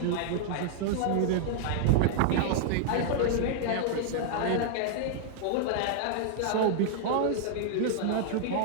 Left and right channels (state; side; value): different; both; correlation -0.01